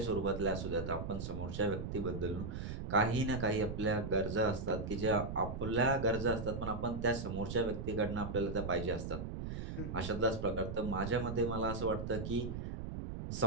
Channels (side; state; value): right; noise; rumble, 5 dB below the sound